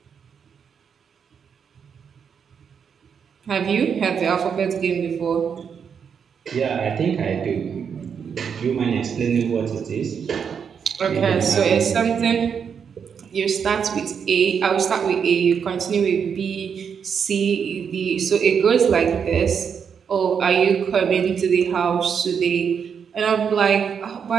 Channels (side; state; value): left; quieter; 7.0 dB